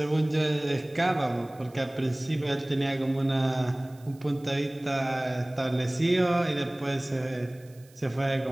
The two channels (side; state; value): right; noise; hiss, 28 dB below the sound